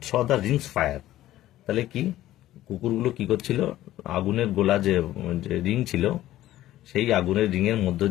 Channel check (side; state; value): right; quieter; 14.4 dB